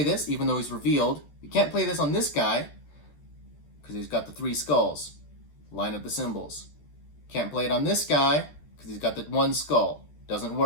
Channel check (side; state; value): right; late; 14 ms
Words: this, even though he's revealed. We can't play this on this guy, because he's got the 3 skulls. Line up the symbols. Can't play it on this guy, because he's got the 1 skull. Doesn't